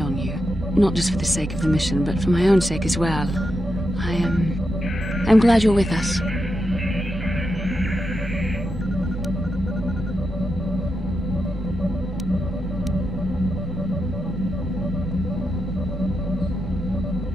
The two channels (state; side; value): normal; both; correlation 0.86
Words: on you. Not just for the sake of the mission, but for my own sake as well. I'm glad you're with us.